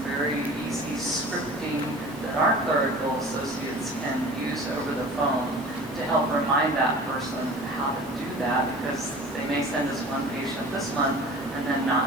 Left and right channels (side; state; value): both; normal; correlation 0.41